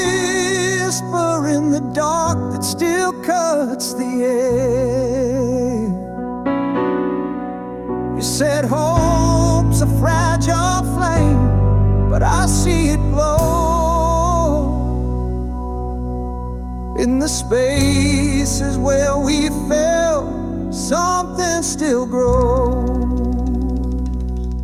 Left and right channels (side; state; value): both; identical; correlation 1.00